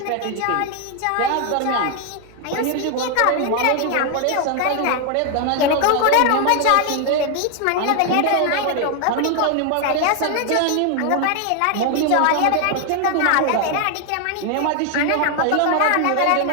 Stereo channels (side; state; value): both; different; correlation 0.00